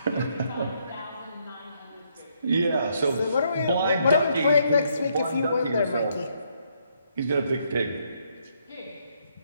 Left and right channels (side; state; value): both; inverted; correlation -0.73